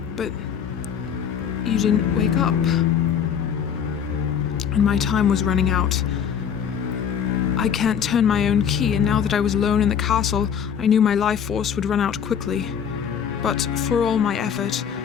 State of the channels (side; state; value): right; quieter; 7.9 dB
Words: but you didn't wake up. And my time was running out. I can't turn my own key, and now that I was alone in the castle, I knew my life force would run out quickly. But for all my effort,